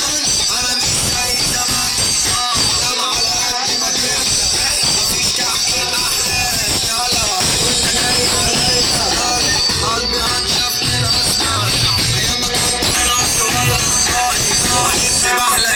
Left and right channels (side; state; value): both; identical; correlation 1.00